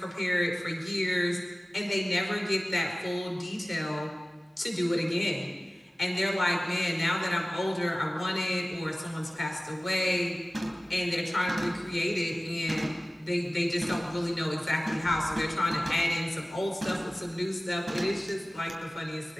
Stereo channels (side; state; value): both; normal; correlation 0.97